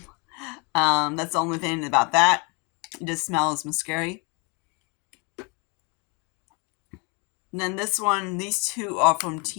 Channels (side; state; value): right; quieter; 31.4 dB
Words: That's the only thing about that. It just smells mascara. And then this one, these 2 are from